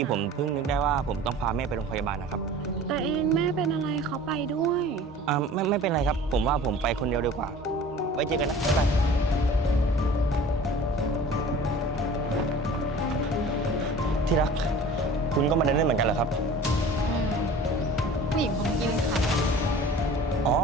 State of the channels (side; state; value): both; normal; correlation 0.43